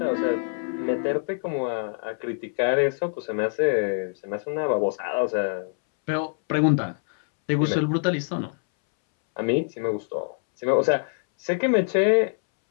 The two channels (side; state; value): right; silent; 62 dB below the other